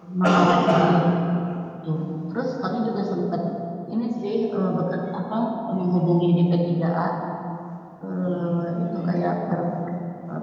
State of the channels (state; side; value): identical; both; correlation 1.00